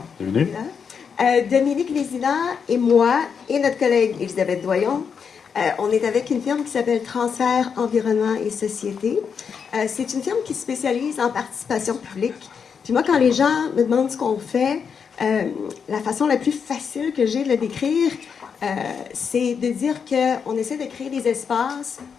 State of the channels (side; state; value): right; quieter; 6.5 dB